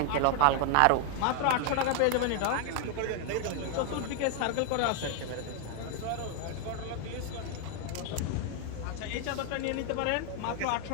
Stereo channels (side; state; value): both; different; correlation 0.00